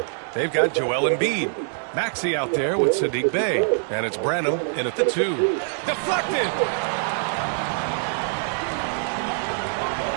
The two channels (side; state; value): left; silent; 63 dB below the other